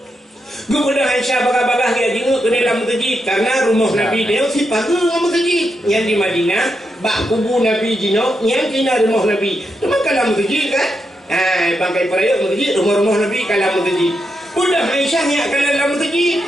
Kemudian Aisyah bagah-bagah dia jenguk ke dalam masjid karena rumah Nabi dia si pagar masjid yang di Madinah bak kubu Nabi jino yang kena rumah Nabi. Cuma kalau masjid kan bangkai perayaan masjid, rumah-rumah Nabi kalam masjid. Udah Aisyah yang kalam masjid.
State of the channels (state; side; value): normal; both; correlation 0.84